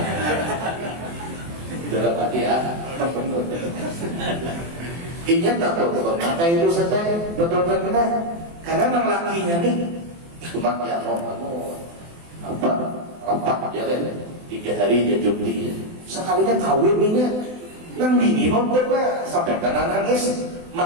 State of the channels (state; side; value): late; left; 24 ms